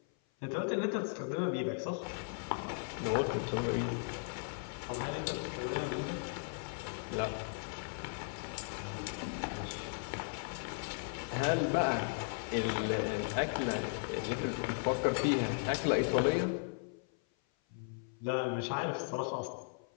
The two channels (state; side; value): silent; right; 53 dB below the other